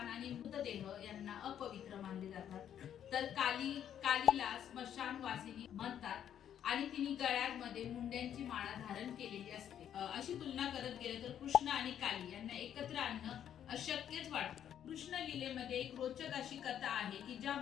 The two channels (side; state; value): right; quieter; 9.8 dB